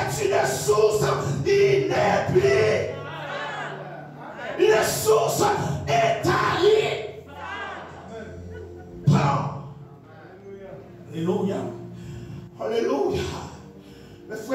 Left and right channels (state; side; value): identical; both; correlation 1.00